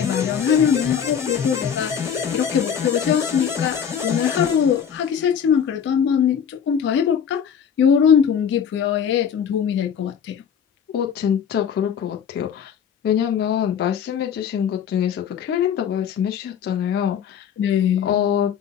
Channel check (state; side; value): quieter; right; 8.0 dB